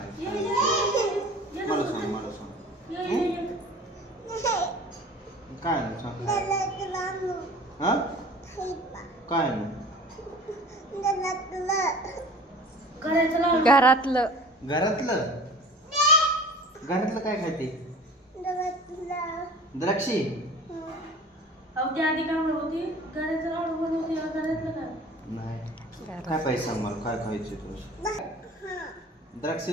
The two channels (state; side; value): normal; both; correlation 0.43